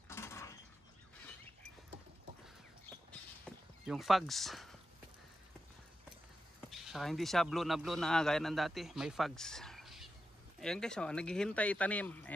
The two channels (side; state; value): both; normal; correlation 0.90